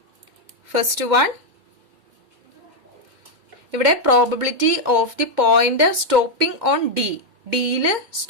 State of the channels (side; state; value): left; late; 2.1 ms